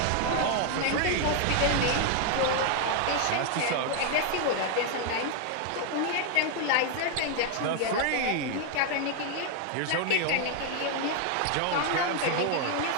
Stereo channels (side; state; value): both; different; correlation 0.00